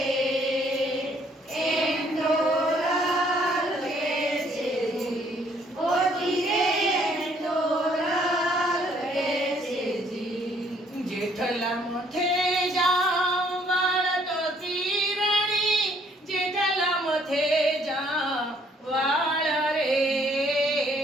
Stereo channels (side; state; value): both; normal; correlation 0.64